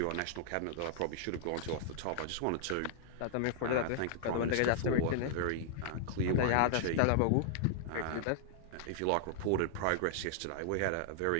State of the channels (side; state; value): both; different; correlation -0.01